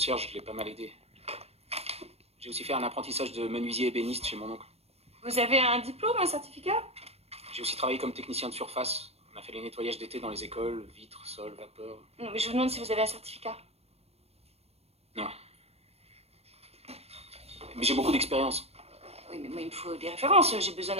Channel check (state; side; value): late; left; 0.30 ms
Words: je l'ai pas mal aidé. J'ai aussi fait un apprentissage de menuisier ébéniste chez mon oncle. Vous avez un diplôme, un certificat? J'ai aussi travaillé comme technicien de surface. On a fait les nettoyages d'été dans les écoles, vitres, sols, vapeur. Non, mais je vous demande si vous avez un certificat. Non. Mais j'ai beaucoup d'expérience. Oui, mais moi, il me faut des références. J'ai besoin